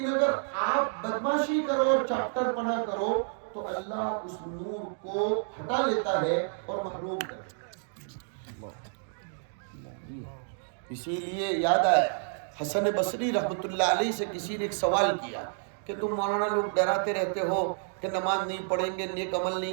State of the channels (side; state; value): left; silent; digital silence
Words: اگر آپ بدماشی کرو اور چاپٹر پنا کرو تو اللہ اس نور کو ہٹا لیتا ہے اور محروم کر دیتا ہے۔ اسی لیے یاد آیا حسن بصری رحمت اللہ علیہ سے کسی نے ایک سوال کیا کہ تم مولانا لوگ ڈراتے رہتے ہو کہ نماز نہیں پڑھیں گے، نیک عمل